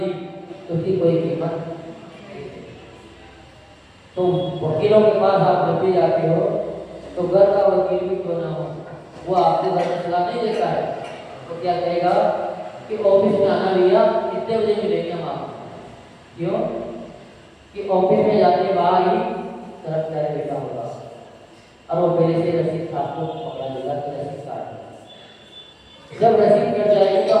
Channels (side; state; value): both; identical; correlation 1.00